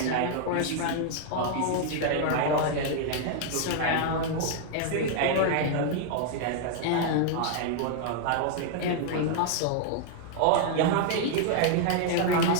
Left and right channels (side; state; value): both; different; correlation 0.00